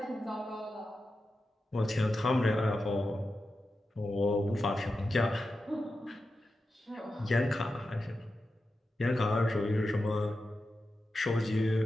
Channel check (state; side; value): normal; both; correlation 0.91